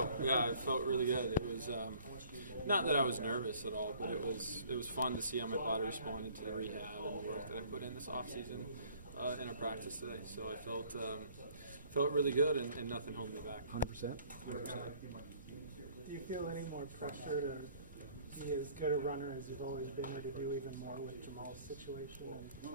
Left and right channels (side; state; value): both; inverted; correlation -0.55